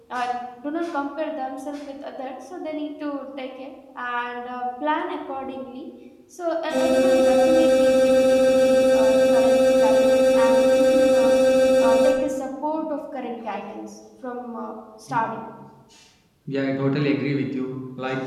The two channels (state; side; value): identical; both; correlation 1.00